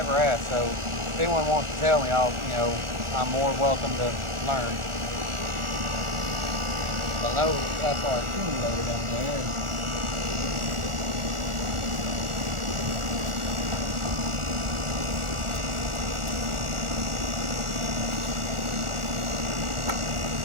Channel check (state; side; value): late; left; 1.4 ms